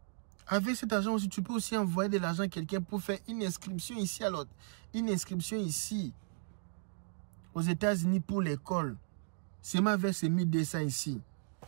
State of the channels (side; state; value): left; silent; digital silence